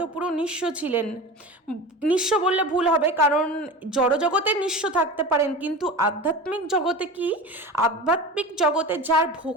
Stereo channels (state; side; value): normal; both; correlation 0.31